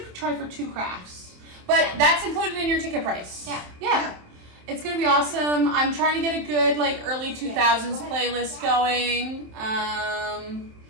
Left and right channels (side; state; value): left; late; 27 ms